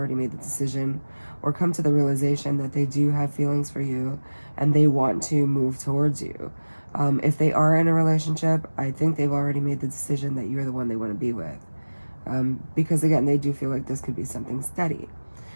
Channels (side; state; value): both; inverted; correlation -1.00